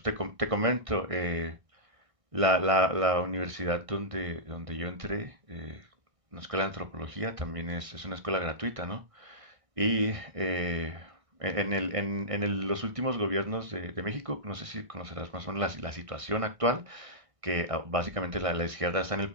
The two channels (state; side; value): late; left; 1.6 ms